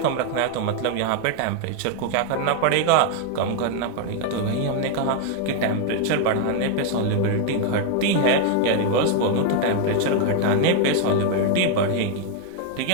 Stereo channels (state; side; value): different; both; correlation 0.00